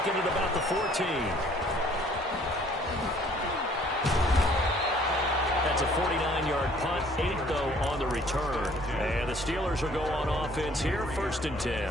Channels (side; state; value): both; normal; correlation 0.58